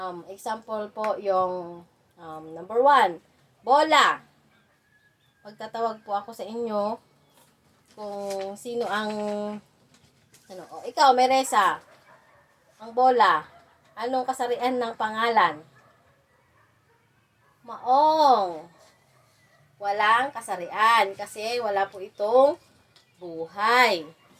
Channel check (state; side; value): identical; both; correlation 1.00